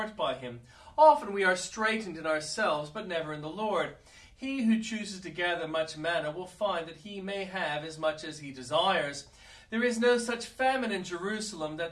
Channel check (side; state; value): both; identical; correlation 1.00